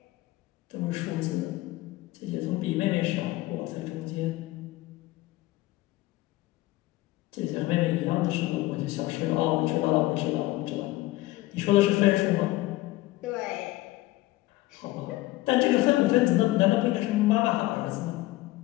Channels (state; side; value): quieter; right; 18.2 dB